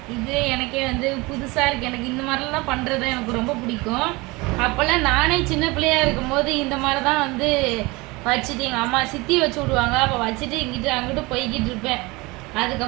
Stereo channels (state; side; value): quieter; left; 23.7 dB